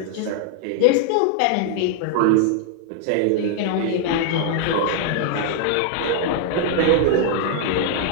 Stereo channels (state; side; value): different; both; correlation 0.00